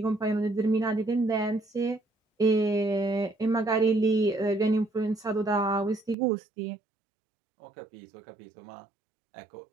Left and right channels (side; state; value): left; drops out; at 6.2 s